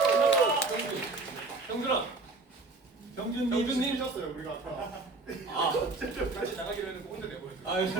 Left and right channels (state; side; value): quieter; left; 3.5 dB